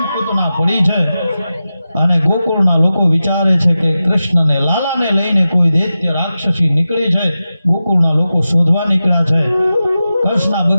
પૂતના પડી છે. અને ગોકુળના લોકો વિચારે છે કે કૃષ્ણને લાલાને લઈને કોઈ દૈત્ય રાક્ષસી નીકળી છે. ગોકુળના લોકો શોધવા નીકળ્યા છે. હર્ષના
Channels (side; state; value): both; inverted; correlation -0.93